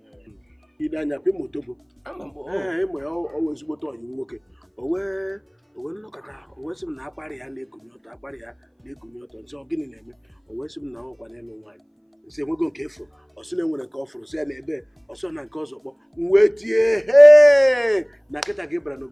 ide anya pe Otobo ịmụ ya ọwa ezigbote ọyị nwoke o wee nnọkọta o wee sị m na akparị ya na-ekunye ọtọ nsị ọ gịnị na-eme o wee sị m na ọkwa n'elu nwaanyị nsị enwego nke efuru ọsị na enwere nke ọ fụrụ sị ya na ebe ọsọ na nke ọzọ kpọ m wee tie na nkịta gị bara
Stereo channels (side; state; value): both; identical; correlation 1.00